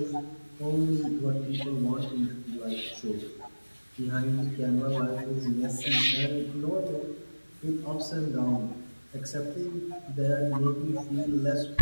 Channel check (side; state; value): both; inverted; correlation -1.00